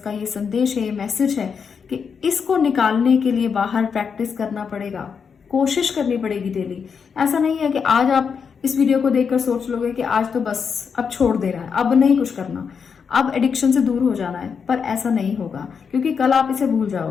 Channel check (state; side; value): quieter; right; 6.2 dB